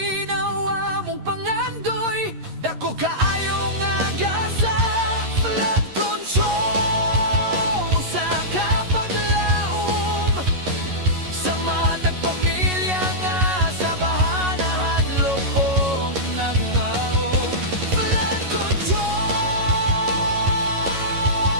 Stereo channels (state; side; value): late; left; 11 ms